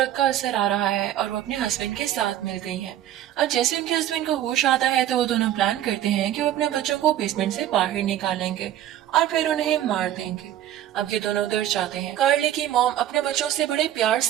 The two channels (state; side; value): quieter; left; 12.0 dB